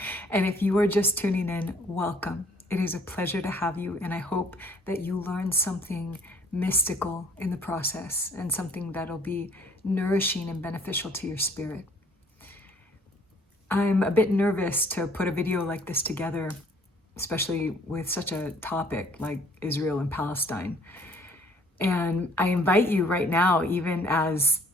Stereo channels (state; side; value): normal; both; correlation 0.59